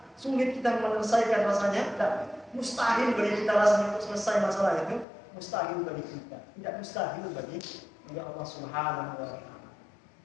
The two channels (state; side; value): drops out; right; at 5.1 s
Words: sulit kita menyelesaikan rasanya, tidak mustahil bagi kita rasanya untuk selesai masalah itu, mustahil bagi kita, tidak mustahil bagi bagi Allah Subhanahu wa taala.